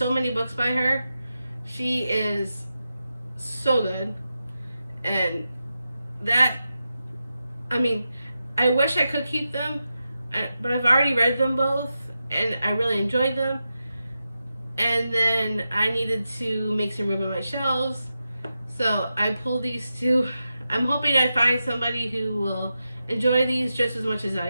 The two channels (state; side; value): inverted; both; correlation -0.89